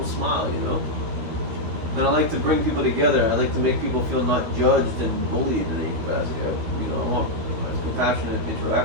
smile, you know? And I like to bring people together. I like to make people feel not judged and bullied in any capacity. I want compassionate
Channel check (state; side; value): late; left; 13 ms